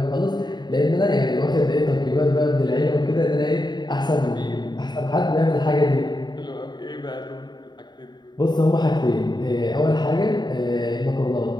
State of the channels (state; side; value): late; right; 0.21 ms